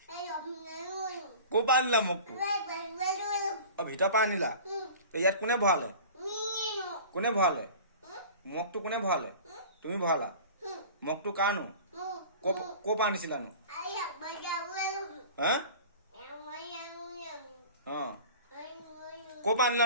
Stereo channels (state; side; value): inverted; both; correlation -0.40